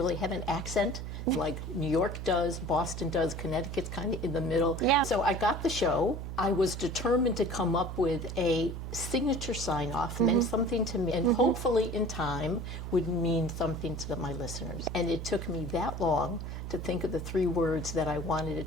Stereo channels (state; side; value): noise; right; hum, 6 dB below the sound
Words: have an accent like New York does, Boston does, Connecticut's kind of in the middle. Yeah. So I got the show. I was determined to come up with a signature sign-off, meant something to me, and hopefully in time would mean something to my listeners. And it took me that long to think of the 3 words that I wanted